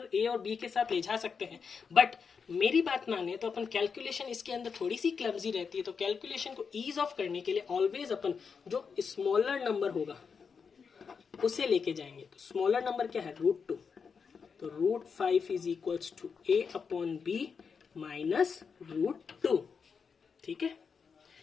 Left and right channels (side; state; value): right; quieter; 5.8 dB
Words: a और b के साथ ले जा सकते हैं, बट मेरी बात माने तो अपन कैलकुलेशन इसके अंदर थोड़ी सी क्लमजी रहती है। तो कैलकुलेशन को ईज ऑफ करने के लिए ऑलवेज अपन जो स्मॉलर नंबर होगा उसे लेके जाएंगे। तो स्मॉलर नंबर क्या है √2, तो √5 is equals to a/b minus √2। ठीक है,